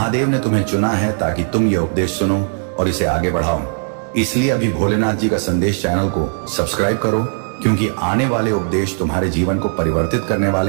ने तुम्हें चुना है ताकि तुम यह उपदेश सुनो और इसे आगे बढ़ाओ। इसलिए अभी भोलेनाथ जी का संदेश चैनल को सब्सक्राइब करो, क्योंकि आने वाले उपदेश तुम्हारे जीवन को परिवर्तित करने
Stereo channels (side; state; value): left; silent; digital silence